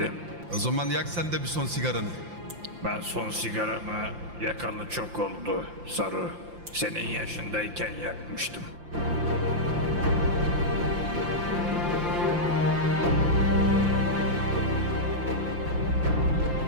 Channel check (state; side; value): late; left; 5.8 ms